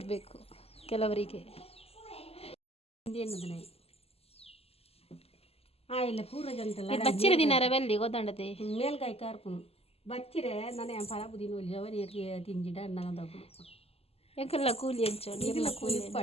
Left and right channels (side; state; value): right; late; 0.29 ms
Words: ಕೆಲವರಿಗೆ. ಬಚ್ಚಿರ ದಿನಾರ ಬೆಲ್ಲಿ ಗೊತ್ತಾಂಡತೆ ಮೇಲ್ಗಾಯಿ ಕಾರ್ಪುನು ಬಚ್ಚಿರೆ ನನಗೆ ಫಲ ಬುದಿನ ಅವನಿಗೆ ತಿಂಜಿಡ ಅನ್ನೋದು ಎಂಕಲ್ಲ ಕೂಲಿ ಹಂಚೋಡಿ ಇಲ್ಲ ಕೂಲಿ